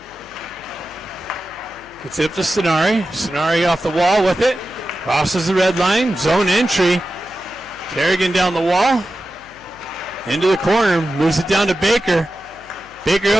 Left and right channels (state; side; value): noise; left; hum, 26 dB below the sound